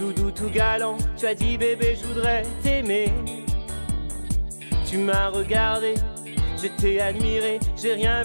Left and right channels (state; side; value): inverted; both; correlation -1.00